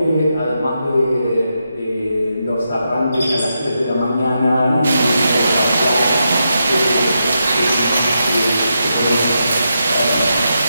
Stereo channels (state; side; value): inverted; both; correlation -0.85